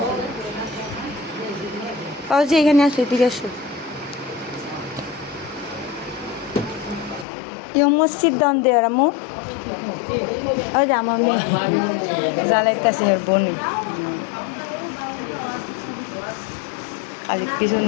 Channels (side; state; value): right; drops out; at 7.2 s